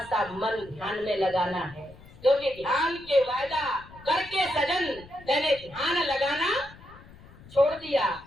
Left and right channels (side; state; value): left; noise; rumble, 21 dB below the sound